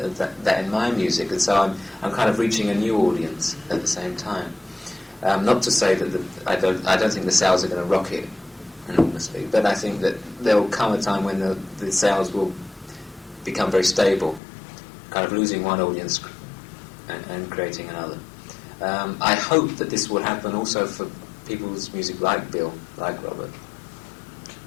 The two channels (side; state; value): right; drops out; at 14.4 s